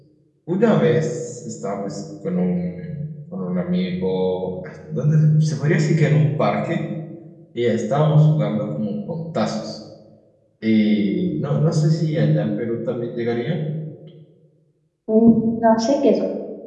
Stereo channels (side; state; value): both; identical; correlation 1.00